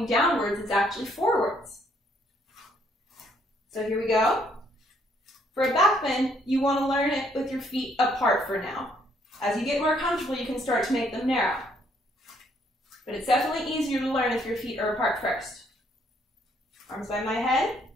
downwards, it's actually forwards. So here we go. For a back bend, you want to learn it with your feet apart for now. As you get more comfortable, you can start to make them narrow. But it's definitely easier to learn if your feet are apart first. Arms by my head.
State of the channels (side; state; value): both; normal; correlation 0.68